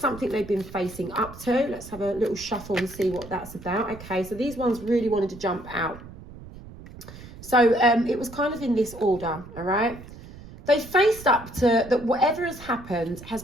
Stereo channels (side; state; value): right; noise; rumble, 16 dB below the sound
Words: they've been facing up to. Let's have a little shuffle and see what that's about. Okay, so these ones really wanted to jump out. So it was kind of in this order, all right? They faced up to that whatever has happened has